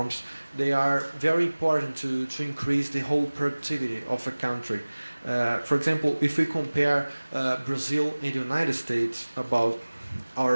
they are very important to increase the whole productivity of a country. For example, if we compare Brazil and the United States about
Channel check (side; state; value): both; inverted; correlation -1.00